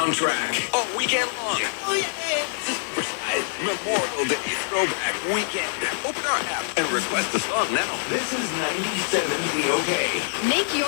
All weekend long. Memorial Day Throwback Weekend. Open our app and request a song now. This is 97 WZOK. Make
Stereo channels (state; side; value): silent; right; digital silence